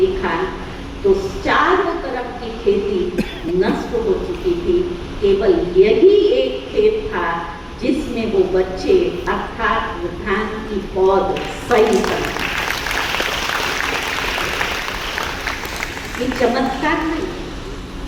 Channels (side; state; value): both; identical; correlation 1.00